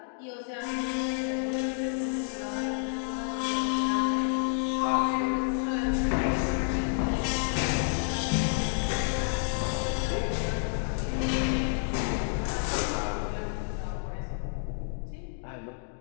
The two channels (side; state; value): right; silent; 58 dB below the other